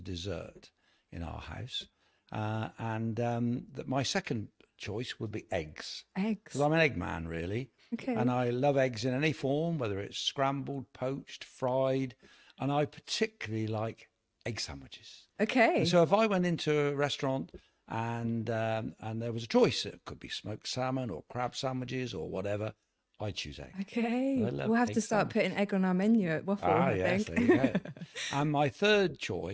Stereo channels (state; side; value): identical; both; correlation 1.00